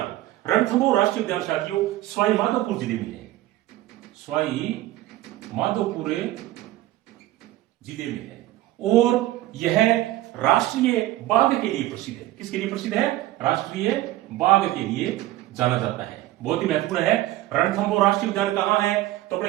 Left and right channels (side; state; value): left; quieter; 15.8 dB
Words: रणथंभौर राष्ट्रीय उद्यान साथियों सवाई माधोपुर जिले में है। सवाई माधोपुर जिले में है और यह राष्ट्रीय बाघ के लिए प्रसिद्ध है। किसके लिए प्रसिद्ध है? राष्ट्रीय बाघ के लिए जाना जाता है। बहुत ही महत्वपूर्ण है। रणथंभौर राष्ट्रीय उद्यान कहां है? तो